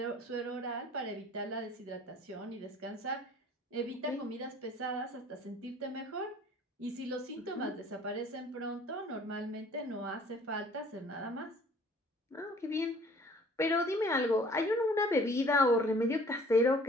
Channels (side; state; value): both; normal; correlation 0.52